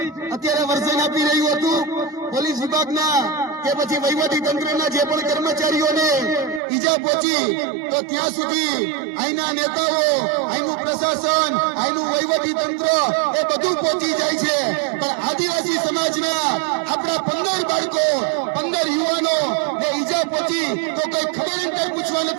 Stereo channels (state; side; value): drops out; left; at 6.6 s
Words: અત્યારે વર્ઝન આપી રહ્યું હતું. પોલીસ વિભાગના કે પછી વહીવટી તંત્રના જે પણ કર્મચારીઓને ઈજા પહોંચી તો ત્યાં સુધી અહીંના નેતાઓ, અહીંનું પ્રશાસન, અહીંનું વહીવટી તંત્ર એ બધું પહોંચી જાય છે. પણ આદિવાસી સમાજના આપણા 15 બાળકો, 15 યુવાનો ને ઈજા પહોંચી તો કઈ ખબર કઈ પૂછવા